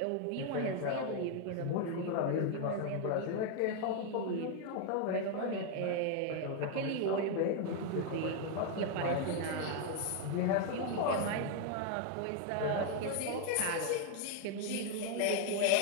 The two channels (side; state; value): both; different; correlation 0.00